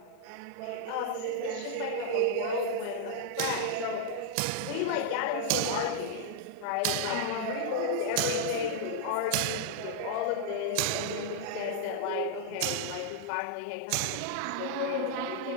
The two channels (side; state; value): both; different; correlation -0.01